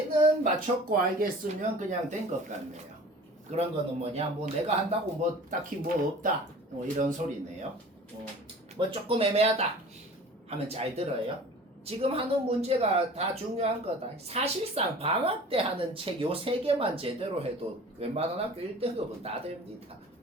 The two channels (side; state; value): both; normal; correlation 0.43